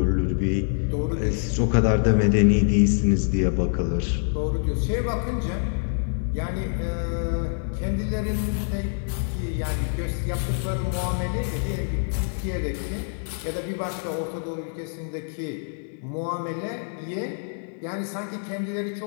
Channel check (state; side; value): silent; right; 61 dB below the other